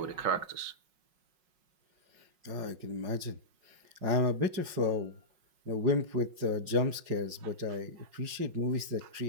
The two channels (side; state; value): left; late; 5.5 ms